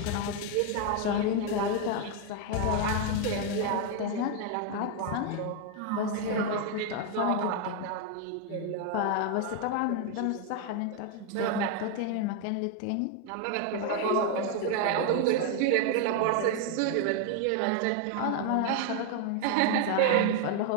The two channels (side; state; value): both; different; correlation 0.01